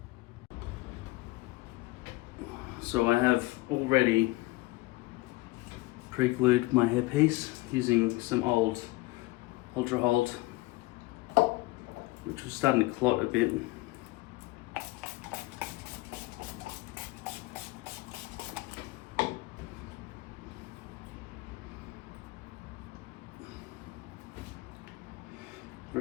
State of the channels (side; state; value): right; quieter; 20.7 dB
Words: So I have already pre-glued my hairpiece using some old Ultra Hold, which was starting to clot a bit.